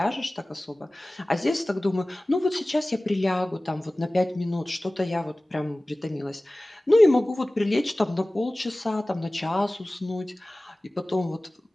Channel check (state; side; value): normal; both; correlation 0.98